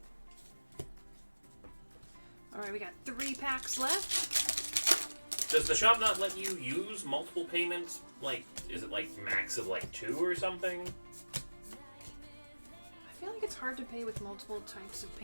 Alright, we got 3 packs left. Does the shop not let you use multiple payments? Like, is it like max of like 2 or something? I feel like it's hard to pay with multiple types of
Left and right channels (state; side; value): inverted; both; correlation -1.00